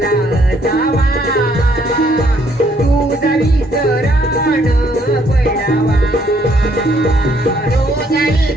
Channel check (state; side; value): normal; both; correlation 0.67